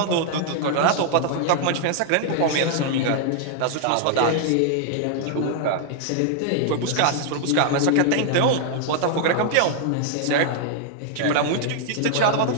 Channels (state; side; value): different; both; correlation -0.01